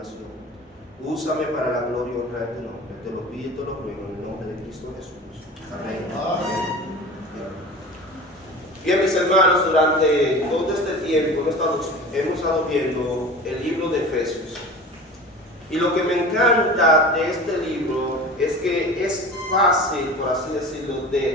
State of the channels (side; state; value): both; normal; correlation 0.36